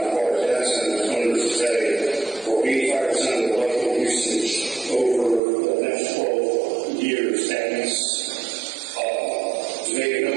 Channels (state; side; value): drops out; left; at 5.4 s